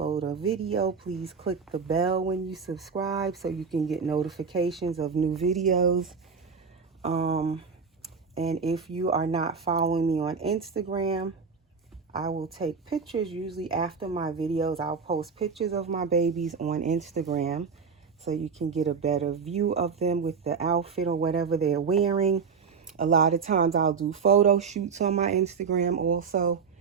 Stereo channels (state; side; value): quieter; left; 5.7 dB